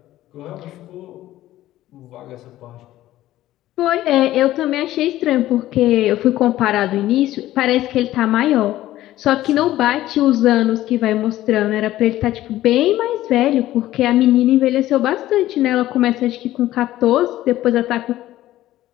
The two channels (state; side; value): quieter; right; 14.7 dB